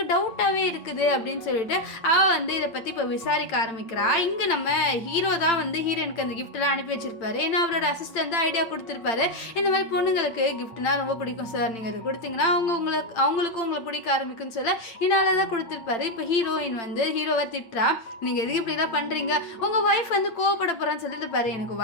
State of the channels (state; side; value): late; right; 8.8 ms